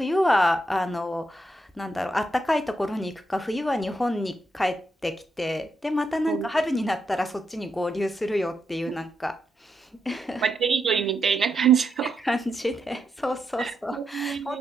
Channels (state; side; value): normal; both; correlation 0.82